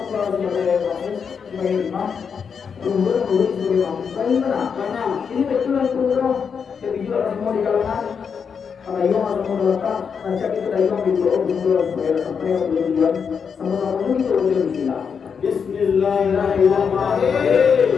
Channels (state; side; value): quieter; right; 6.5 dB